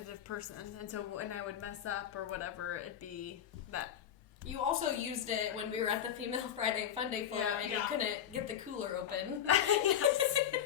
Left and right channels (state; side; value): quieter; right; 9.6 dB